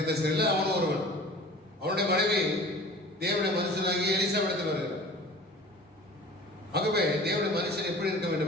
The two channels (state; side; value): normal; both; correlation 0.42